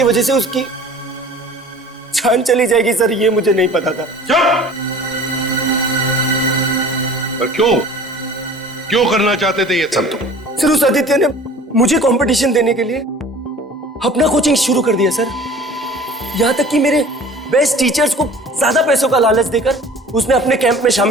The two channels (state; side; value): normal; both; correlation 0.45